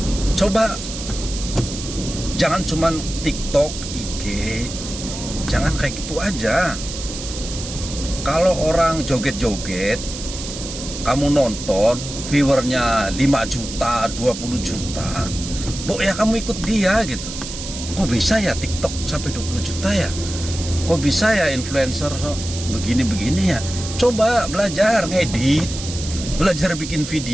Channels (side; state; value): right; noise; hiss, 9 dB below the sound